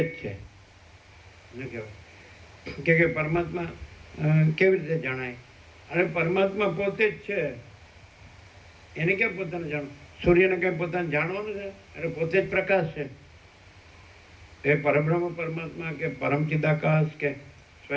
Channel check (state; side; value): identical; both; correlation 1.00